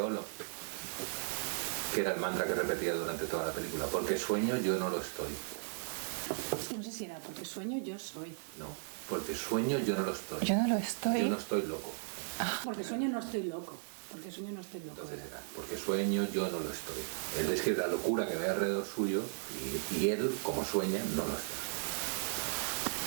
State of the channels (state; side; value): silent; left; digital silence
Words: que era el mantra que repetía durante toda la película. Porque sueño, yo no lo estoy. Es que no sé si era porque sueño, yo soy. Creo. Porque sueño, yo no lo estoy. Yo no lo estoy. Yo no estoy loco. Porque sueño, no estoy loco. Porque sueño, no estoy loco, era. Porque sueño, yo no lo estoy. Él describe la locura que ve alrededor suyo y él, como sueña, no lo está.